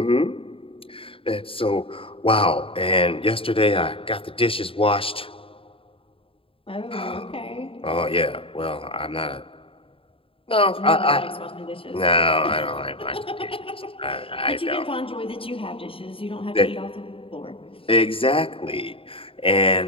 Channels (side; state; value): right; late; 0.26 ms